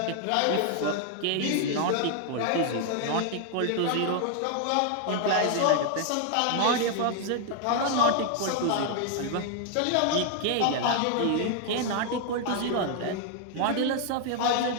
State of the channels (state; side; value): different; both; correlation 0.00